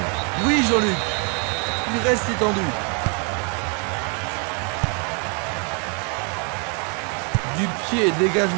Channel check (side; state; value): left; quieter; 37.3 dB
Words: Oui, Jean-Luc. Il reste étendu. Du pied,